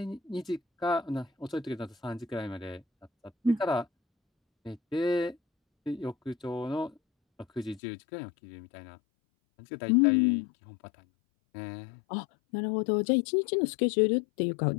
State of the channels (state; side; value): drops out; right; at 7.8 s